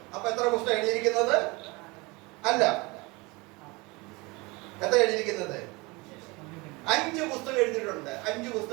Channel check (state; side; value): quieter; left; 25.1 dB